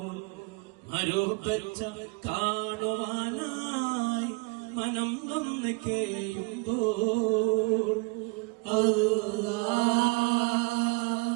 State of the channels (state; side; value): quieter; left; 27.8 dB